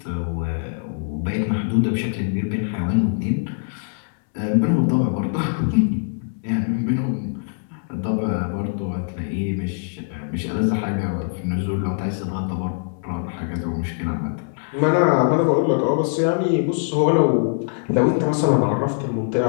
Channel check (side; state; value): right; silent; digital silence